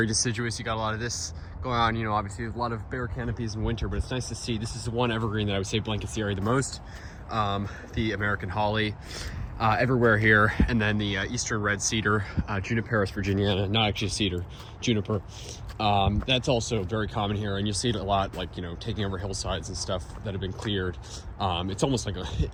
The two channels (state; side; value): identical; both; correlation 1.00